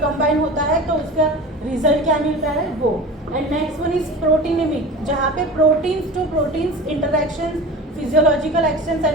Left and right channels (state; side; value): normal; both; correlation 0.35